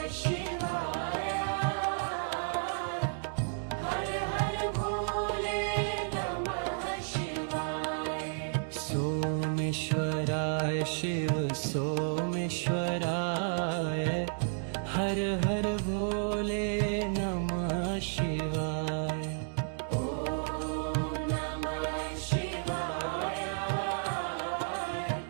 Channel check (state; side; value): silent; left; digital silence